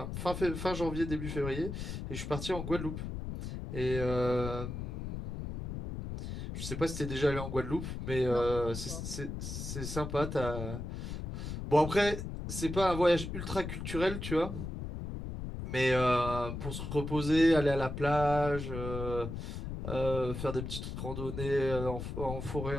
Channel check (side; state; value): left; noise; rumble, 6 dB below the sound